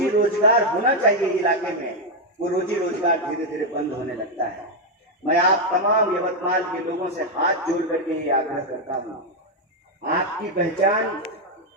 रोजगार होना चाहिए इलाके में, वो रोजी रोजगार धीरे धीरे बंद होने लगता है। मैं आप तमाम यवतमाल के लोगों से हाथ जोड़ करके ये आग्रह करता हूँ, आपकी पहचान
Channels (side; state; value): both; normal; correlation 0.02